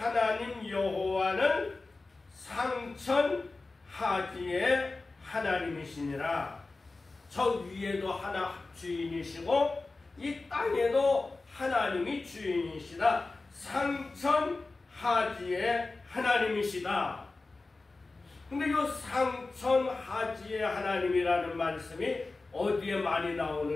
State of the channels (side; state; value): right; quieter; 3.5 dB